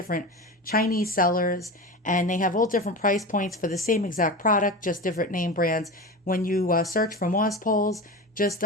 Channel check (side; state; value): both; normal; correlation 0.26